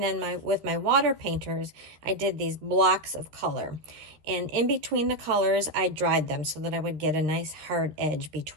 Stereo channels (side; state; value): left; late; 13 ms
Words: then with my water painters I did these blocks of color, and in between the colors I dried them so that I would get a nice hard edge